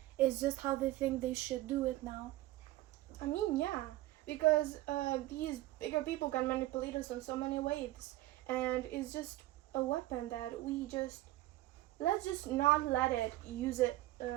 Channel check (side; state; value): left; quieter; 16.7 dB